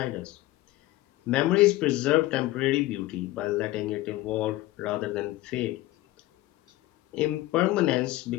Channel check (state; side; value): quieter; right; 17.2 dB